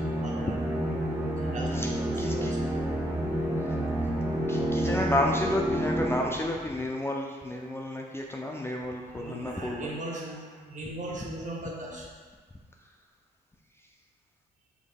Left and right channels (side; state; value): both; normal; correlation 0.73